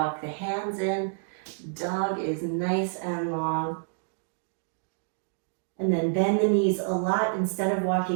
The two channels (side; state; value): left; silent; digital silence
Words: the hands in. Dog is nice and long. And then bend the knees a lot. Instead of